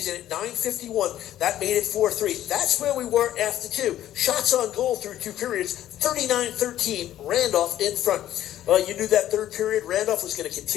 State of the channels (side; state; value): right; quieter; 12.5 dB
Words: at 9:51. That made it 4-3. That's where we were after 2. Shots on goal through 2 periods, 39-13, Randolph in front. You knew that third period, Randolph was going to